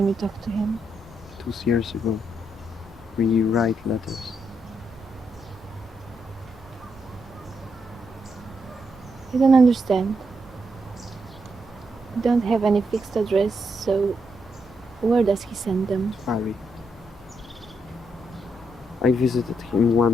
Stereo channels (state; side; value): normal; both; correlation 0.80